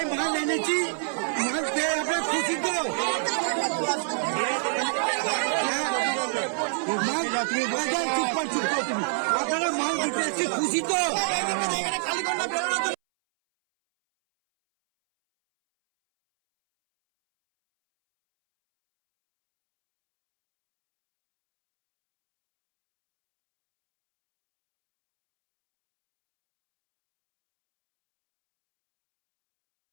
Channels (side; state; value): left; silent; 61 dB below the other